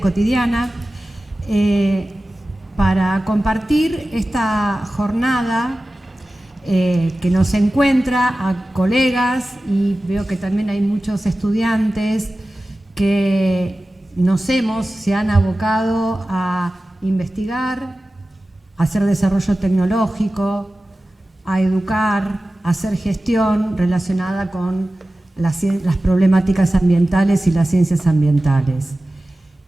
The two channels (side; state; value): both; normal; correlation 0.96